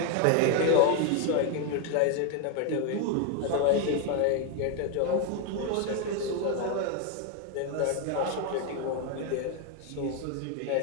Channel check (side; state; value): both; different; correlation 0.01